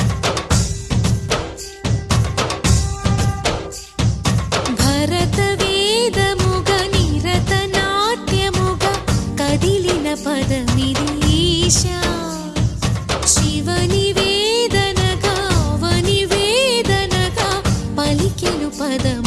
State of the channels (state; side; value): identical; both; correlation 1.00